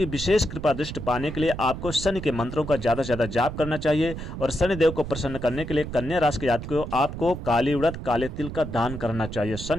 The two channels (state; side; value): noise; right; rumble, 8 dB below the sound